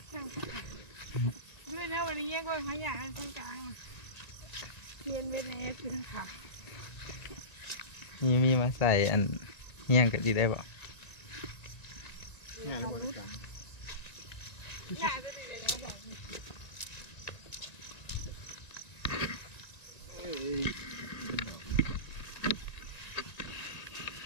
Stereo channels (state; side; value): late; right; 1.9 ms